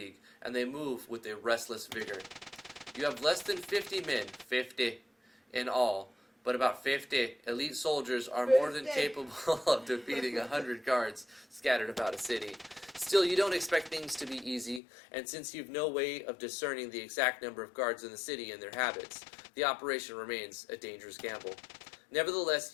and they move with a restless vigor. You have less than 50 men, 50 in all, but about 50 elite soldiers are more than 50. capable of defeating 100 guards scattered about a city. Still, you don't expect things to be easy, and since you've no way of discerning the exact number of guards in the city and their habits, the operation remains a dangerous gamble. Nevertheless,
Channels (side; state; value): right; drops out; at 14.8 s